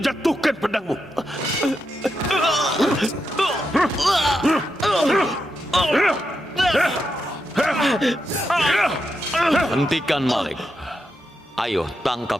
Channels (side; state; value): both; normal; correlation 0.85